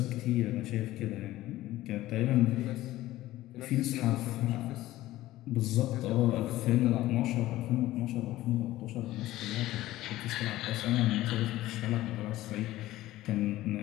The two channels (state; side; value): quieter; right; 16.0 dB